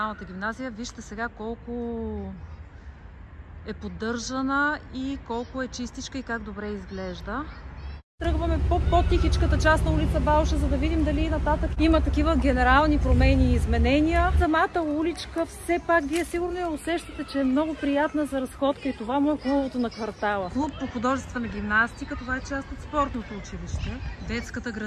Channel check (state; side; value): identical; both; correlation 1.00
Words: гимназия. Вижте сега колко е поддържана и колко е чистичка и как добре изглежда. Тръгваме по по-тихичката част на улица Балша, за да видим дали нататък има такива генерални промени и изменения. Самата уличка, все пак, вие сигурно я усещате, че е много приятна за разходка и това му е хубавото на квартала. Клуб по художествена гимнастика, това е част от спортното училище. Детската